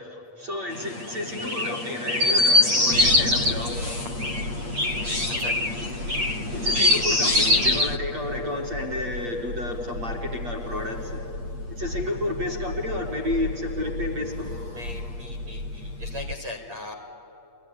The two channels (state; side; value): late; left; 8.5 ms